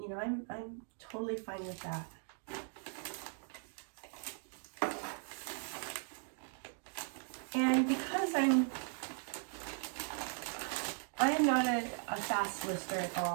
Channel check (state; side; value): silent; left; 52 dB below the other